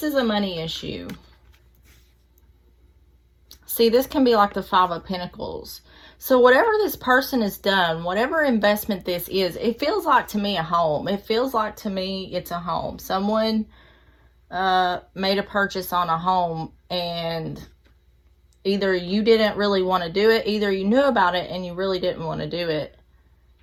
is a money issue. See, this can be like the Five of Pentacles. So whatever this person has done, whatever investment this is, it feels like to me a home. It feels like to me it's a home. Someone made a purchase on a home, and either you didn't really want to do it, either you knew about it and you really didn't want to do it,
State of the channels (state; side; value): identical; both; correlation 1.00